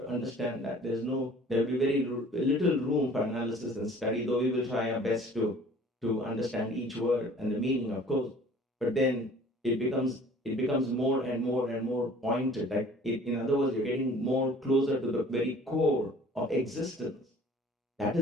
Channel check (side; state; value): both; normal; correlation 0.50